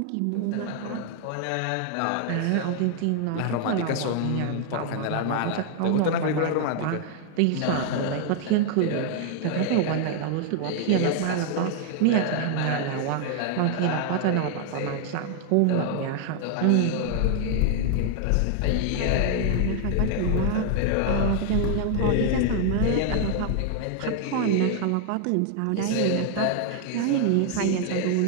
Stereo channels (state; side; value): different; both; correlation 0.00